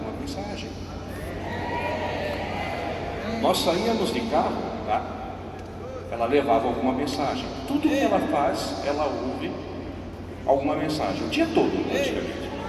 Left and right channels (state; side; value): identical; both; correlation 1.00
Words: mensagem. Nós saíamos de carro, tá? Ela levava alguma mensagem. Tudo que ela faz, ela ouve alguma mensagem, o dia todo, praticamente.